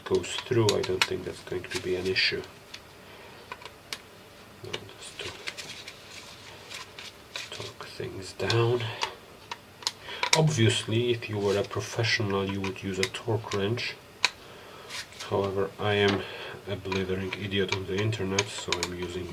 goes through, I don't think that's going to be an issue. Just to torque things down. Obviously, if you were a professional, you would use a torque wrench. However, I am a blithering idiot on the internet, so I'm using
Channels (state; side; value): identical; both; correlation 1.00